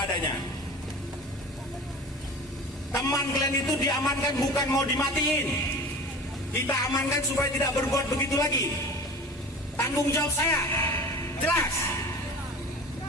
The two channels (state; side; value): normal; both; correlation 0.37